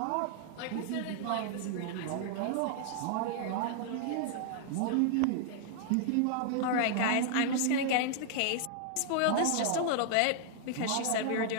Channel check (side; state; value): both; different; correlation -0.01